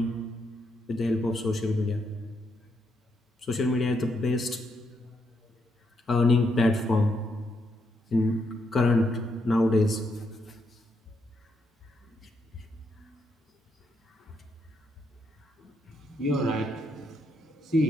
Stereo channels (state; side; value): normal; both; correlation 0.78